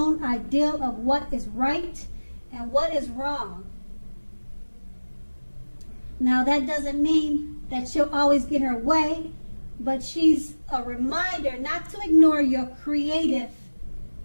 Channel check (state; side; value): inverted; both; correlation -1.00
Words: ideal of what is right and what is wrong. Now, that doesn't mean that she'll always get her way, but she's a reminder not to ignore your creative,